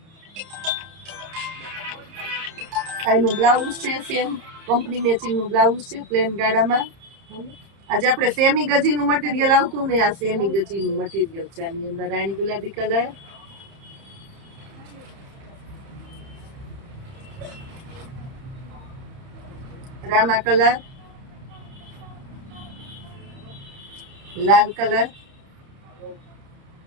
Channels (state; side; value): late; left; 30 ms